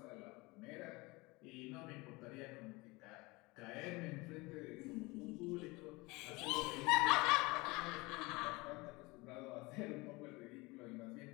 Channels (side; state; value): right; quieter; 23.9 dB